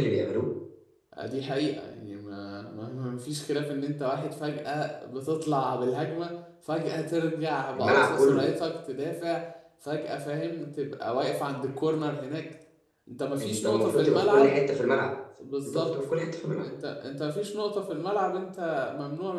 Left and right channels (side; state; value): both; identical; correlation 1.00